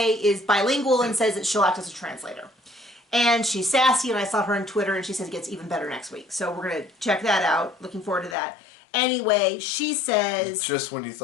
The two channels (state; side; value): drops out; right; at 8.3 s